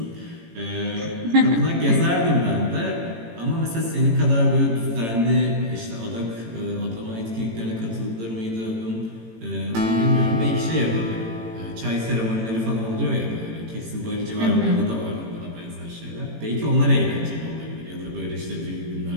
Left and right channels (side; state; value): left; late; 18 ms